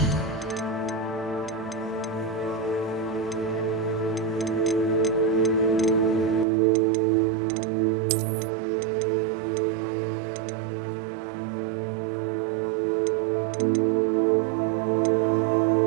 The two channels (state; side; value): drops out; left; at 6.5 s